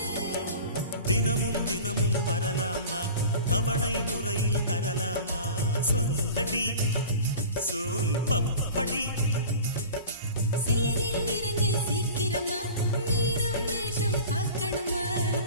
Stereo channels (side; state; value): both; inverted; correlation -0.39